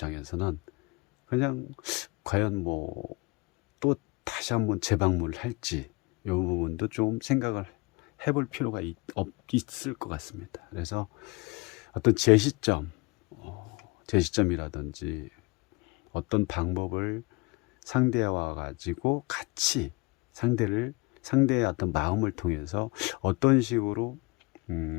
그냥 과연 뭐 또 다시 한번 재방문을 할지, 이 부분도 좀 생각을 해볼 필요가 있을 것 같습니다. 그래서 어떤 제시점이라든지 어떤 방법을 상대와 가지고 같이 상대의 어떤 마음을 통해서 어떤 식으로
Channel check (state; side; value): quieter; right; 25.4 dB